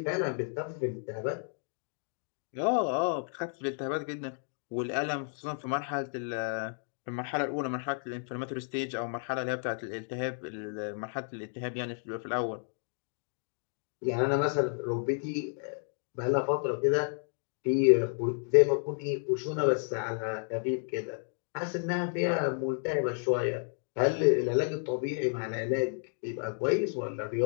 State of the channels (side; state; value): right; silent; 57 dB below the other